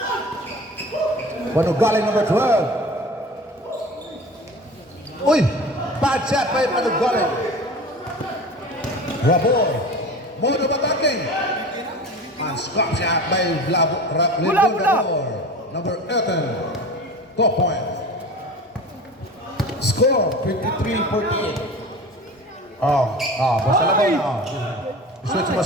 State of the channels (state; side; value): normal; both; correlation 0.36